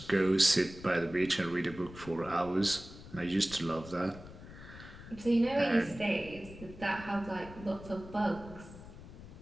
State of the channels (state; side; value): noise; left; rumble, 15 dB below the sound